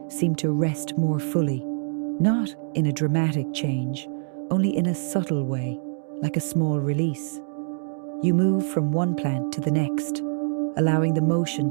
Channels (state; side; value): silent; left; digital silence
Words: seem to rest more fully, not in a dramatic change, only in a subtle way, like a small release. You move from one plant to the next, allowing the motion